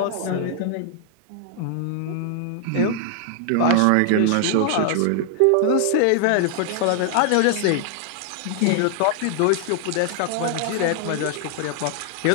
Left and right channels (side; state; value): both; different; correlation 0.00